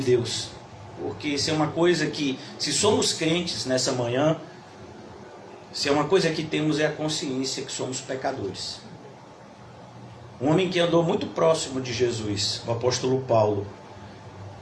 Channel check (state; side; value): identical; both; correlation 1.00